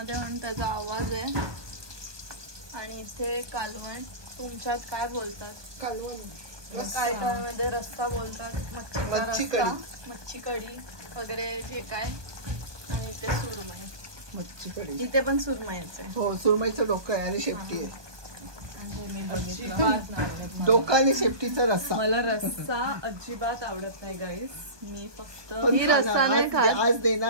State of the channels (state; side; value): late; left; 1.2 ms